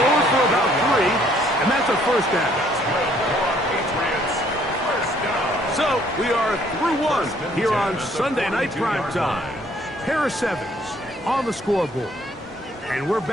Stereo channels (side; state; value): both; normal; correlation 0.63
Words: for about 3, and that's a first down. So, we are through one here on Sunday Night Primetime. Pair of 7s on the scoreboard. And we're